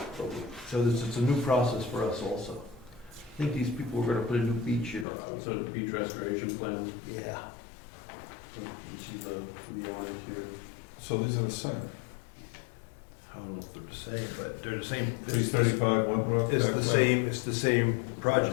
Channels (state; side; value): drops out; right; at 5.1 s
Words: So this is a new process for us also. I think these people were gonna put a new beach in. So the beach restoration plan, Yeah. so you see the owners here. So these are the same. I don't know if they're the same, but they're the same. 335 Wentworth. It's the same